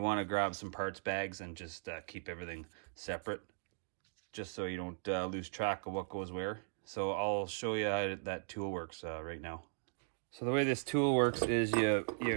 want to grab some parts bags and just keep everything separate, just so you don't lose track of what goes where. So I'll show you how that tool works right now. So the way this tool works is you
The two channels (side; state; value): left; silent; digital silence